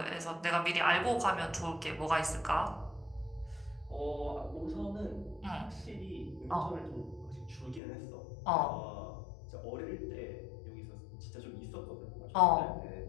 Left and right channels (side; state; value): right; drops out; at 7.8 s